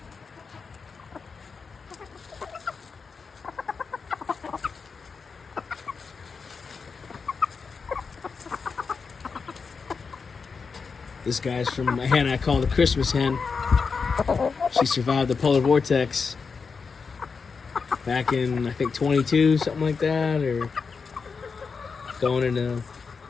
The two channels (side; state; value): right; quieter; 5.2 dB